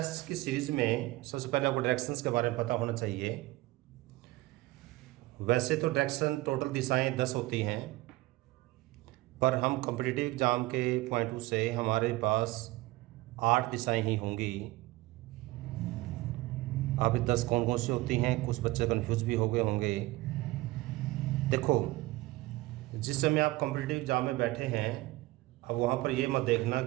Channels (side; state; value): left; quieter; 19.6 dB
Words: की सीरीज में सबसे पहले आपको डायरेक्शंस के बारे में पता होना चाहिए। वैसे तो डायरेक्शन टोटल दिशाएं 10 होती हैं, पर हम कॉम्पिटिटिव एग्जाम के पॉइंट ऑफ व्यू से हमारे पास 8 दिशाएं ही होंगी। अब 10 कौन कौन सी होती हैं, कुछ बच्चे कन्फ्यूज भी हो गए होंगे। देखो, जिस समय आप कॉम्पिटिटिव एग्जाम में बैठे हैं, अब वहाँ पर ये मत देखना